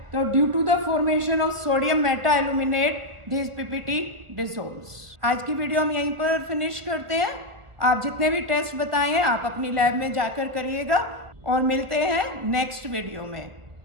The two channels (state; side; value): late; left; 1.6 ms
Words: तो due to the formation of sodium meta aluminate this PPT dissolves. आज की video हम यहीं पर फिनिश करते हैं. आप जितने भी टेस्ट बताए हैं आप अपनी लैब में जाकर करिएगा और मिलते हैं नेक्स्ट वीडियो में.